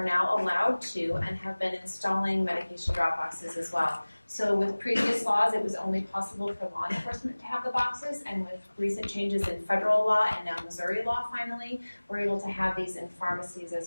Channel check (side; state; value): both; inverted; correlation -1.00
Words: now allowed to and have been installing medication drop boxes as well. So with previous laws, it was only possible for law enforcement to have the boxes, and with recent changes in federal law and now Missouri law finally, we're able to have these in pharmacies